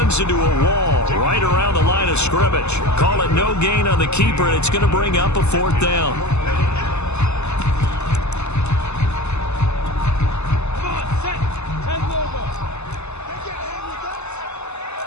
into a wall right around the line of scrimmage. Call it no gain on the keeper, and it's going to bring up a fourth down.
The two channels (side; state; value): right; late; 0.81 ms